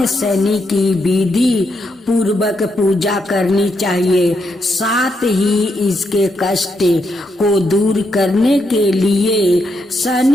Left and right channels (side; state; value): both; normal; correlation 0.80